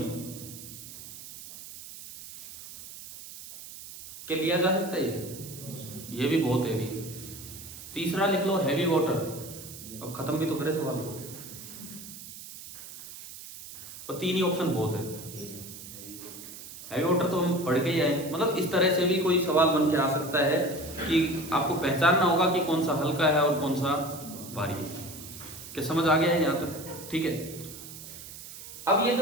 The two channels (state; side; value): noise; right; hiss, 13 dB below the sound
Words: क्या लिया जा सकता है? ये भी बहुत हैवी। तीसरा लिख लो हैवी वाटर। अब खत्म भी तो करे सवाल को, और तीन ही ऑप्शन बहुत है। हैवी वाटर तो हम पढ़ के ही आए। मतलब इस तरह से भी कोई सवाल बन के आ सकता है कि आपको पहचानना होगा कि कौन सा हल्का है और कौन सा भारी है। क्या समझ आ गया है यहाँ तक? ठीक है। अब ये